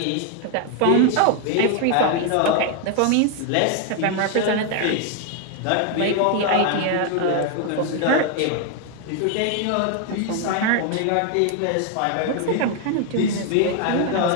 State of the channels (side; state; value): both; different; correlation 0.00